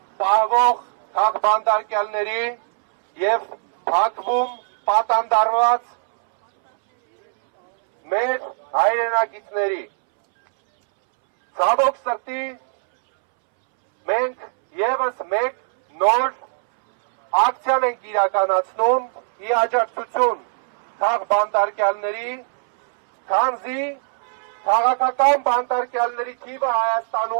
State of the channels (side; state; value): left; silent; 65 dB below the other